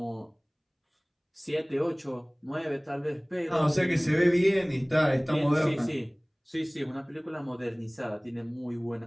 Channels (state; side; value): identical; both; correlation 1.00